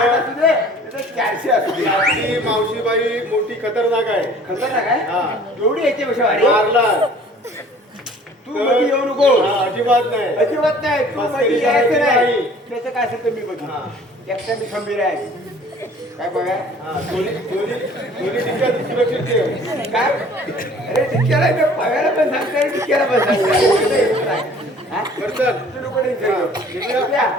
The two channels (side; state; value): both; normal; correlation 0.51